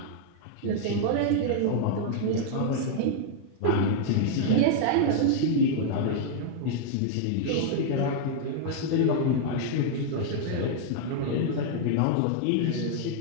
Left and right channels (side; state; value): both; different; correlation -0.01